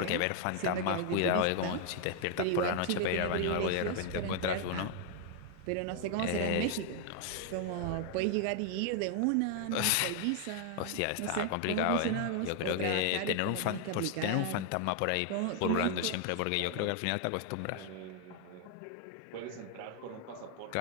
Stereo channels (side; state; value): both; different; correlation 0.00